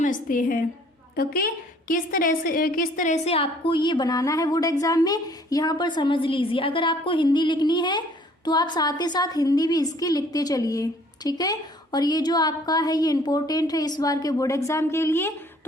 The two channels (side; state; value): both; normal; correlation 0.58